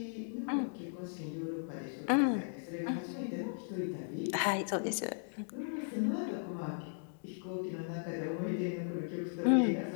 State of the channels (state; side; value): silent; right; digital silence